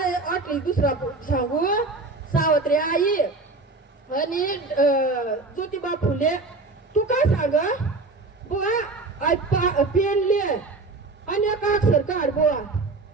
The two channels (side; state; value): left; quieter; 3.5 dB